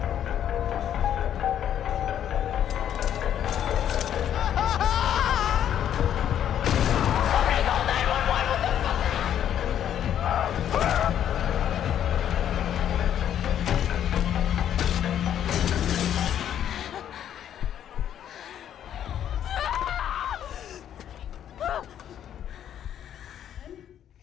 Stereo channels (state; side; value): quieter; right; 10.1 dB